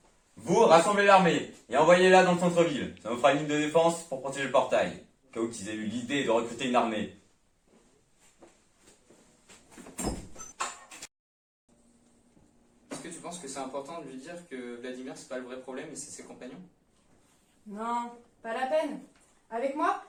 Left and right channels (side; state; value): both; identical; correlation 1.00